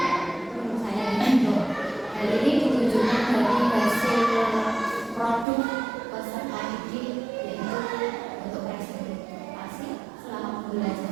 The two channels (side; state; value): left; drops out; at 5.5 s